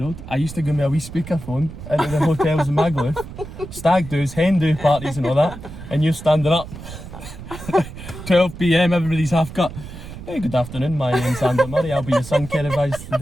I used to go with a wee speakerphone into the hotels in Magaluf, stag do's, hen do parties and all that, and you're standing up. 12 PM, everybody's half cut. Hey, good afternoon, my name's Zander Murray. I'll be your sun care advisor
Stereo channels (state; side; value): noise; right; rumble, 12 dB below the sound